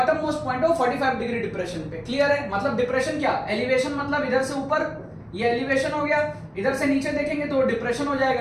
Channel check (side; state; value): both; identical; correlation 1.00